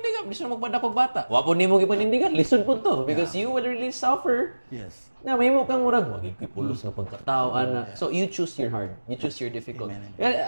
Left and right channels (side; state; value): both; inverted; correlation -1.00